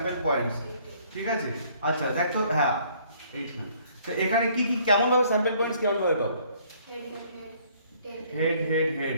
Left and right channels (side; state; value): both; inverted; correlation -0.61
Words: পয়েন্টস, ঠিক আছে? আচ্ছা দেখ তো, হ্যাঁ 8 মিনিট। তো এখানে কি কি কেমন ভাবে স্যাম্পল পয়েন্টস কেমন ভাবে পাবো, হেড হেড